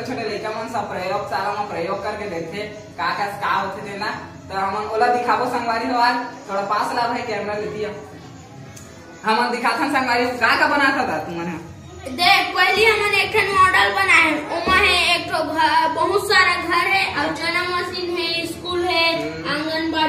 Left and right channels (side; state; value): both; identical; correlation 1.00